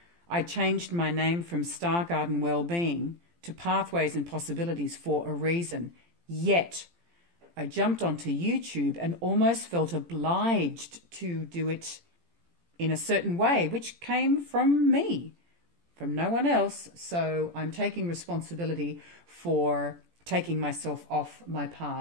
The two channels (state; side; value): late; left; 17 ms